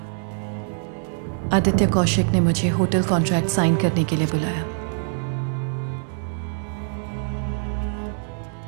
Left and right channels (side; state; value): left; silent; digital silence